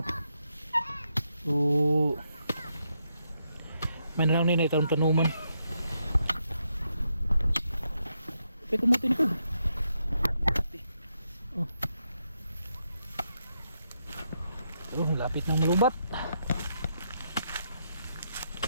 So may na lang nila itong tanuman. Pwede kumutin ko. Oh, lapit ng malubat.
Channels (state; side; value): inverted; both; correlation -0.80